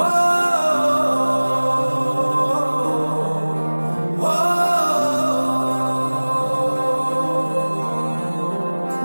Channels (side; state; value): both; inverted; correlation -1.00